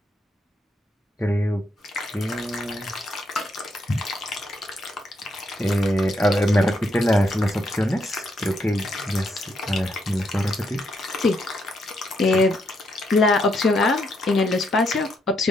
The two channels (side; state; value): both; normal; correlation 0.77